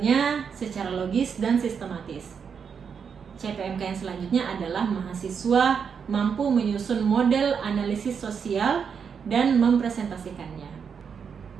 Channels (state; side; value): quieter; left; 6.6 dB